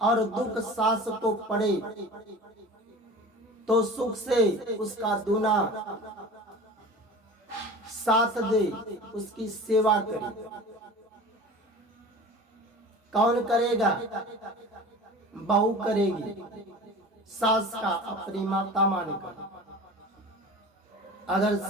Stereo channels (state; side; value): normal; both; correlation 0.37